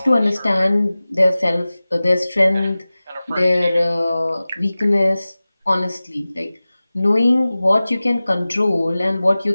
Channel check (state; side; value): inverted; both; correlation -0.97